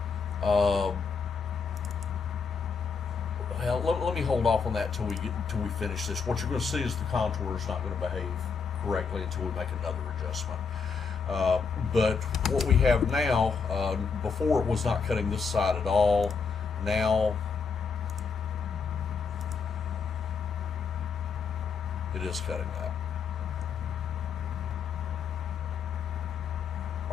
well, let me hold off on that till we finish this. What you're going to see is the contour is not going to behave correctly until we make another adjustment. But what we have now, before it was not cutting this side at all. Now it is cutting that.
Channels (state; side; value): quieter; right; 5.4 dB